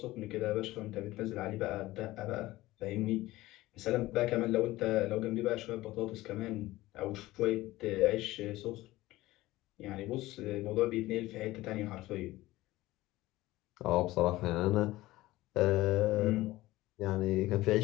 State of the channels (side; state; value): right; quieter; 17.7 dB